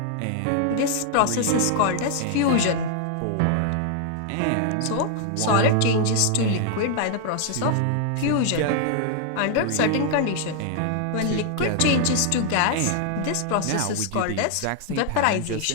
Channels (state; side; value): different; both; correlation 0.00